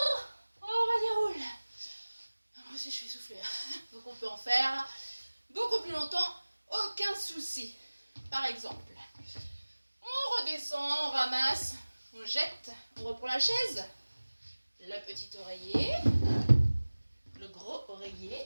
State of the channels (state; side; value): inverted; both; correlation -1.00